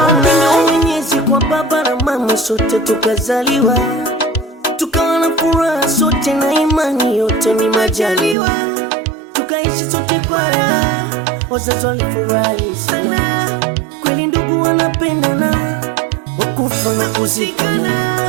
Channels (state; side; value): drops out; left; at 8.3 s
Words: Mwenyezi kwa baba na mama sote tukazaliwa, tukawa na furaha sote na imani yote ni majaliwa. Tukaishi sote kwa raha, wazazi walifurahi sana. Kweli ndugu wanapendana, wakufa na kuzikana.